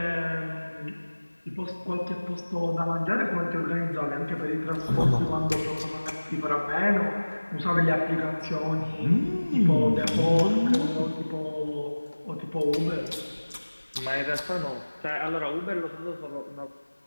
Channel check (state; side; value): inverted; both; correlation -1.00